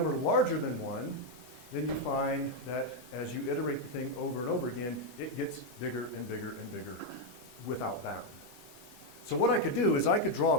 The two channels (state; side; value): normal; both; correlation 0.02